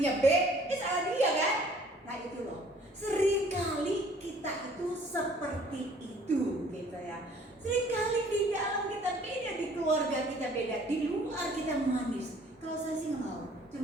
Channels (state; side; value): normal; both; correlation 0.56